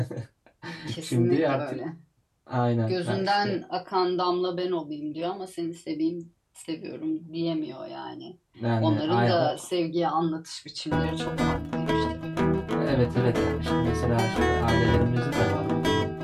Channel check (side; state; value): both; identical; correlation 1.00